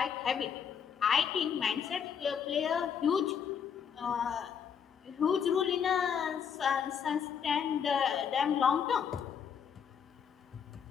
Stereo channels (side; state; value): right; quieter; 7.5 dB